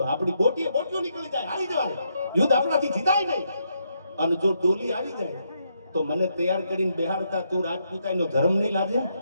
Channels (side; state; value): both; inverted; correlation -0.78